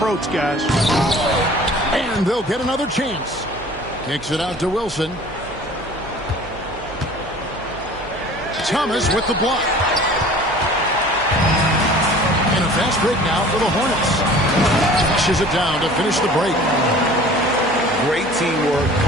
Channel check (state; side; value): noise; right; hum, 19 dB below the sound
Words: guys. And they'll get another chance. Kicks it out to Wilson. Thomas with the block. And a fast break now for the Hornets. Pushes it down to finish the break. Great teamwork